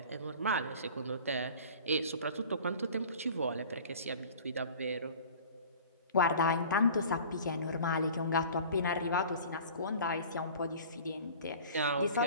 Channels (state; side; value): inverted; both; correlation -0.43